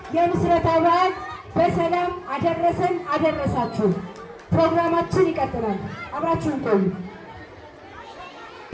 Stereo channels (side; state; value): both; identical; correlation 1.00